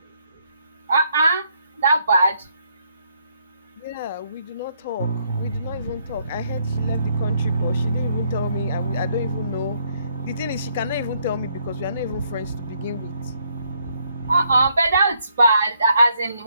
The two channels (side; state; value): both; inverted; correlation -0.71